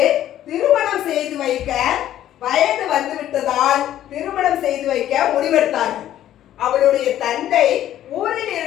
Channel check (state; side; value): quieter; right; 12.1 dB